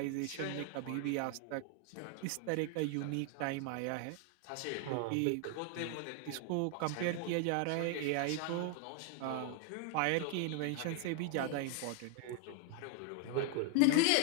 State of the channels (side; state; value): both; different; correlation 0.00